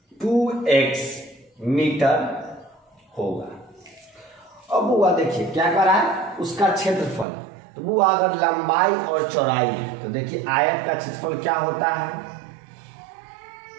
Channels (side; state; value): left; drops out; at 7.2 s